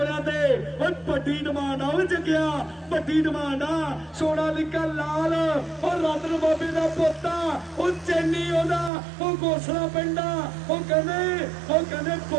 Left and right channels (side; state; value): left; drops out; at 8.9 s